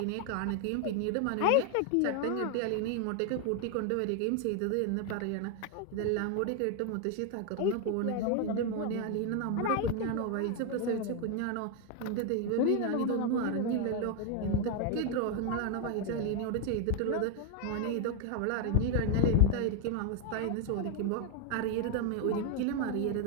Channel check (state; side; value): different; both; correlation 0.01